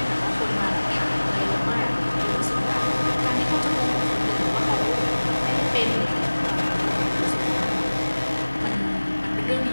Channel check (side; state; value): both; inverted; correlation -1.00